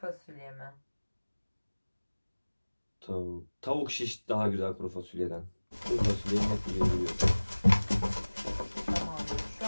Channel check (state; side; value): inverted; both; correlation -1.00